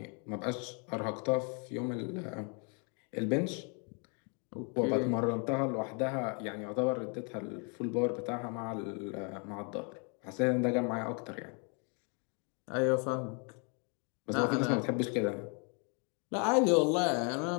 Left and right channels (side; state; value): right; quieter; 37.3 dB